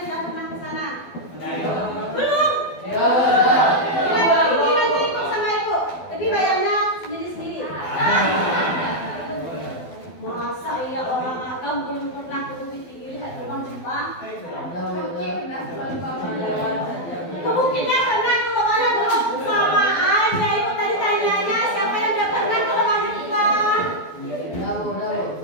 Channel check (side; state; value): right; late; 12 ms